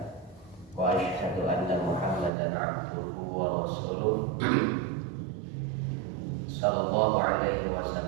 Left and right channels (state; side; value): drops out; left; at 2.3 s